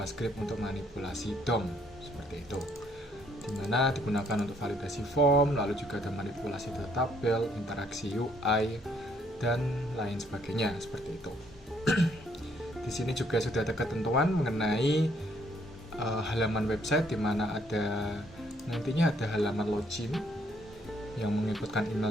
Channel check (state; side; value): normal; both; correlation 0.68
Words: untuk manipulasi DOM seperti itu, dimana digunakan untuk validasi form, lalu juga ada manipulasi data tabel, interaksi UI dan lain sebagainya seperti itu. Di sini juga sudah ada ketentuan mengenai halaman website, di mana ada nantinya ada halaman login yang menginputkan